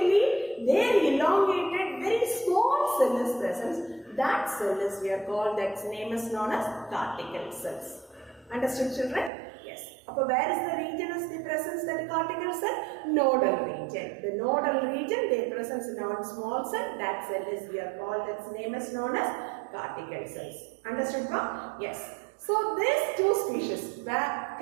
there elongated, very small cell is present. That cell is we are called, that name is known as cortical cells. Understood, children? Yes. Upper where is the region is the presence that cortical cell? Nodal region. The nodal region, they presence in our small cell. That cell is we are called, its name is known as cortical cells. Understood, ma'am? Yes. So these two species,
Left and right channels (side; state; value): left; drops out; at 9.3 s